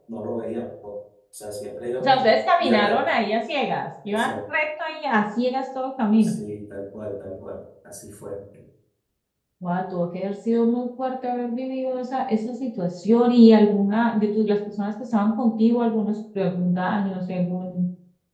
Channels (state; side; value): identical; both; correlation 1.00